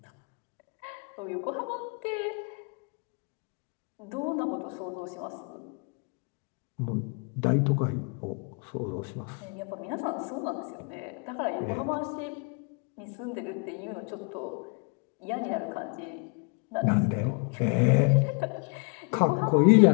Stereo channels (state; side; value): quieter; right; 35.5 dB